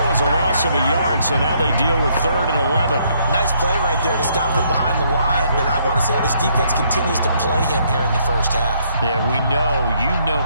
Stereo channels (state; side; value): inverted; both; correlation -0.69